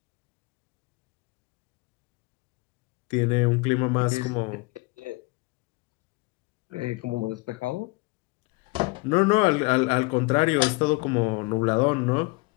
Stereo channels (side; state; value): right; quieter; 25.7 dB